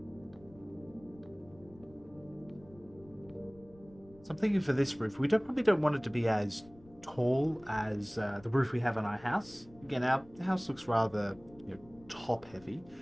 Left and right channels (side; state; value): left; noise; rumble, 24 dB below the sound